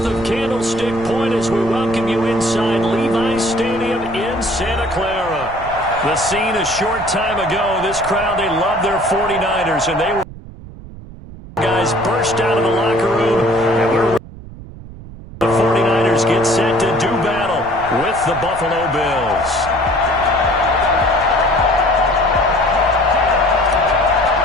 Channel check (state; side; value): noise; right; rumble, 15 dB below the sound